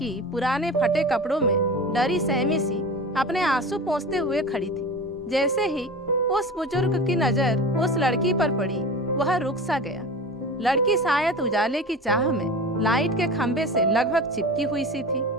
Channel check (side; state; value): both; normal; correlation 0.32